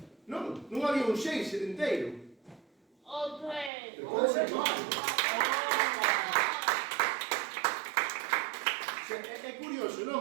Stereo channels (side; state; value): left; drops out; at 3.7 s